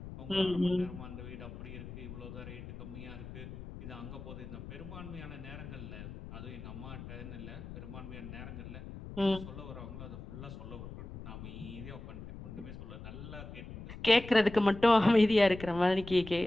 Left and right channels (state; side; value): noise; left; rumble, 12 dB below the sound